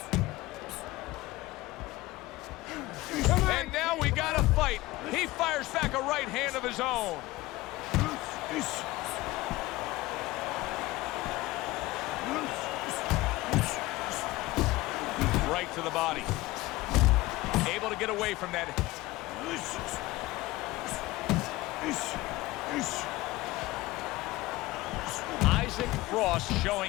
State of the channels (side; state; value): right; quieter; 19.1 dB